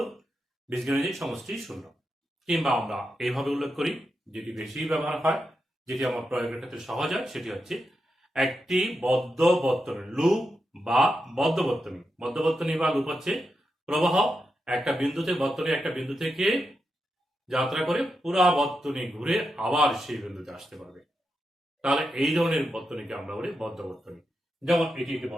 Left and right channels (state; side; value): normal; both; correlation 0.87